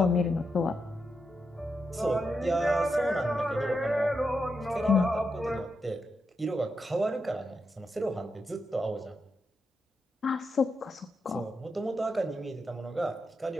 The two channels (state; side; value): normal; both; correlation 0.85